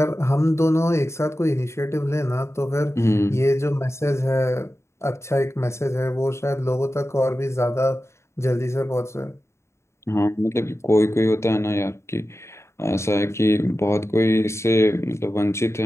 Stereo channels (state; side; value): late; right; 0.13 ms